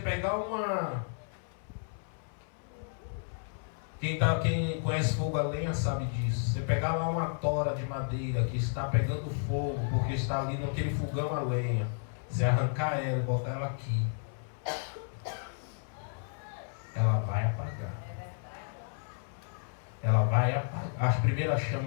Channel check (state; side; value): silent; right; 56 dB below the other